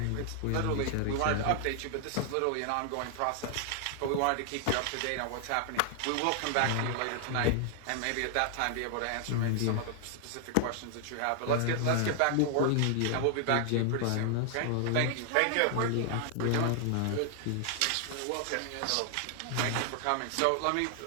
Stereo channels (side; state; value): both; different; correlation 0.00